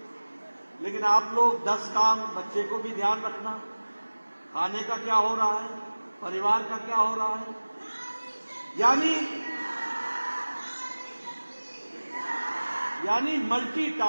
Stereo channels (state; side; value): inverted; both; correlation -1.00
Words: लेकिन आप लोग 10 काम, बच्चे को भी ध्यान रखना, खाने का क्या हो रहा है, परिवार का क्या हो रहा है, यानी